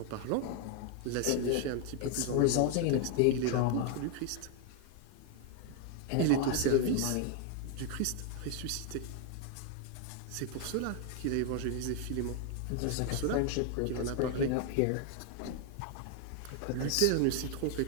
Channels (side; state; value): both; different; correlation 0.00